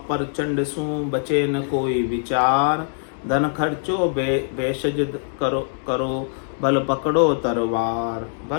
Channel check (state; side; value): silent; right; digital silence